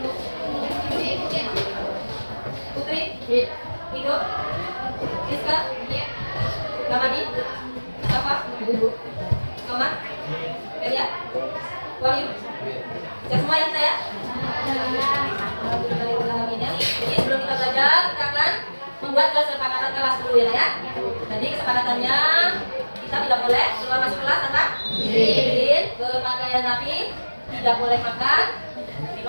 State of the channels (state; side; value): inverted; both; correlation -1.00